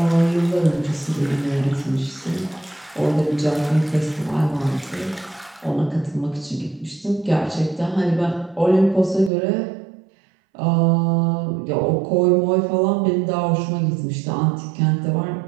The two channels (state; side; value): drops out; left; at 9.3 s